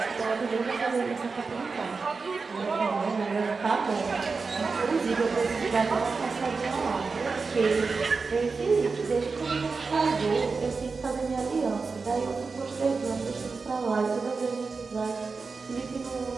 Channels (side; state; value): left; quieter; 4.5 dB